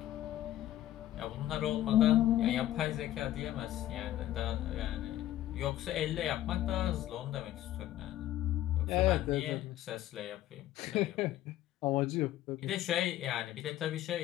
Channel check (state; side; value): quieter; right; 13.6 dB